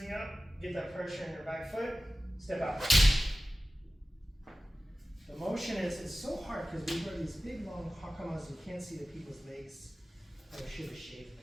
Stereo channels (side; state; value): both; normal; correlation 0.95